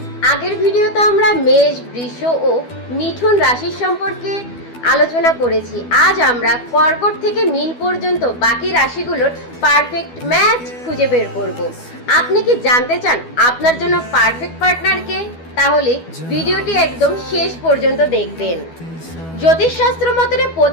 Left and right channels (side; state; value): right; late; 12 ms